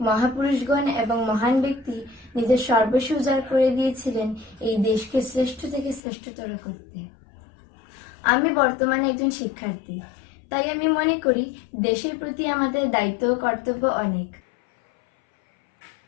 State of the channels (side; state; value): right; drops out; at 6.0 s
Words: মহাপুরুষগণ এবং মহান ব্যক্তি নিজের সর্বস্ব উজাড় করে দিয়েছিলেন এই দেশকে শ্রেষ্ঠ থেকে শ্রেষ্ঠতর করতে। আমি বর্তমানে একজন শিক্ষার্থী, তাই আমি মনে করি দেশের প্রতি আমাদের দায়িত্ব ও কর্তব্য অনেক।